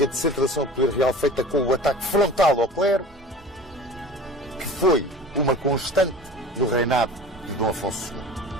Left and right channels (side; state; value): both; normal; correlation 0.40